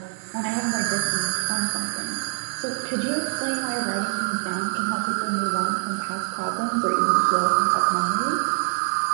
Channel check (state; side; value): silent; left; digital silence